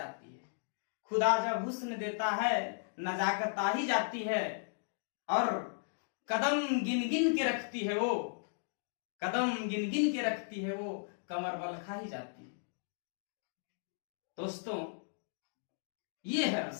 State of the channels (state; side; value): silent; right; digital silence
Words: है। खुदा जब हुस्न देता है नजाकत आ ही जाती है, और कदम गिन गिन के रखती है वो, कदम गिन गिन के रखती है वो, कमर बल खा ही जाती है। दोस्तों, ये है